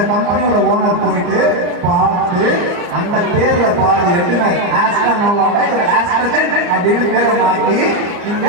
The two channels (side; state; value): left; late; 34 ms